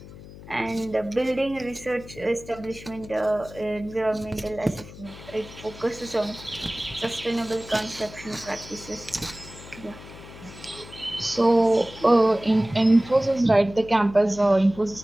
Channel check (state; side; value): noise; left; hum, 17 dB below the sound